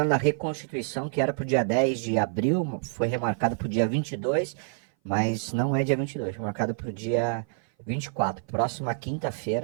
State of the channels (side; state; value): left; silent; 57 dB below the other